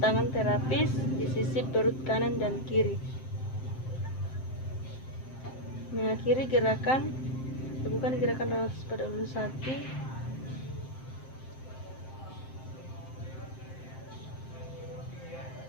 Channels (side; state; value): right; late; 7.7 ms